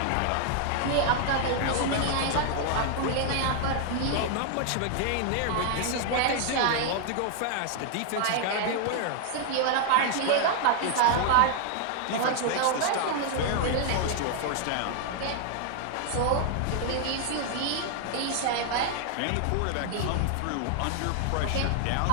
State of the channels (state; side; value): different; both; correlation 0.00